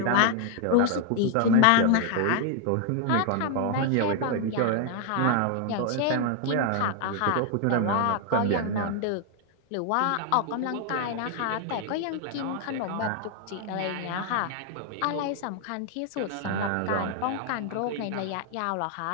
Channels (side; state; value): both; different; correlation 0.00